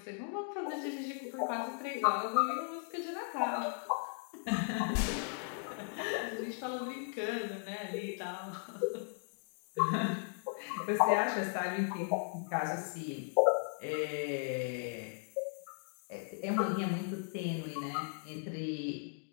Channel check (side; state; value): right; silent; 53 dB below the other